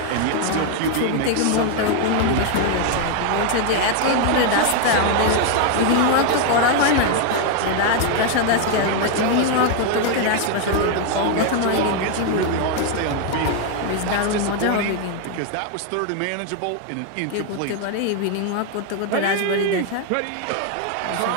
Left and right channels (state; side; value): different; both; correlation 0.01